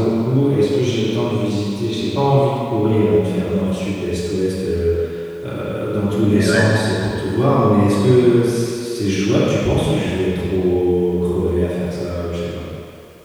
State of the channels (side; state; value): both; identical; correlation 1.00